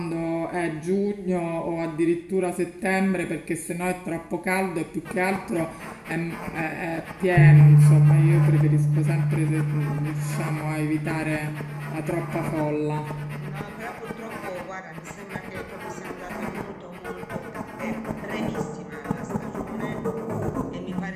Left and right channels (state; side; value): identical; both; correlation 1.00